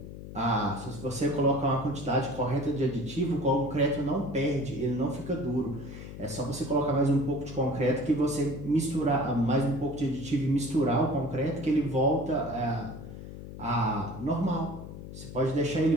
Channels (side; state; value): left; noise; hum, 12 dB below the sound